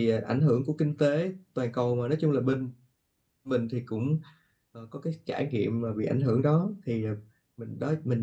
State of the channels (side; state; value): both; identical; correlation 1.00